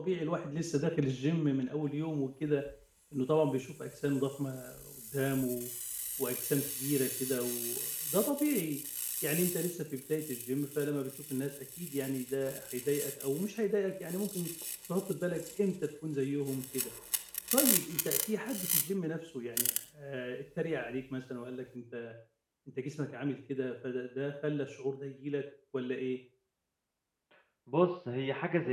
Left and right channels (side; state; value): both; identical; correlation 1.00